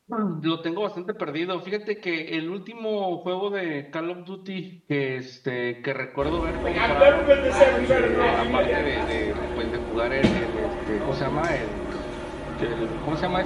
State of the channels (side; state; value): both; identical; correlation 1.00